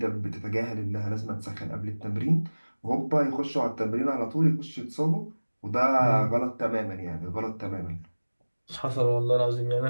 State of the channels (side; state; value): both; inverted; correlation -1.00